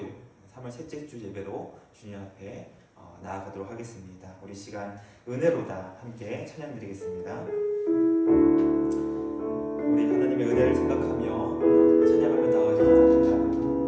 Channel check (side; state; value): both; identical; correlation 1.00